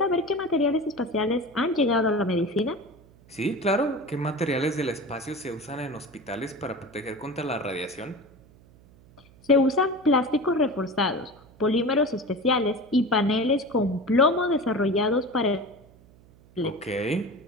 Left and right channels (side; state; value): right; noise; hum, 26 dB below the sound